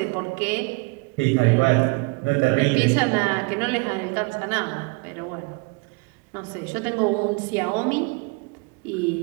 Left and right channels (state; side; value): quieter; left; 29.6 dB